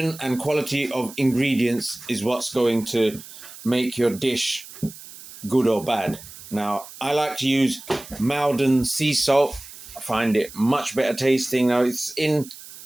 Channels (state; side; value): noise; right; hiss, 16 dB below the sound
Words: and quality of ingredients is what's going to make your dish good or bad. Now, I like to use M.A.D sea salt. I find it much better tasting. Now, it's in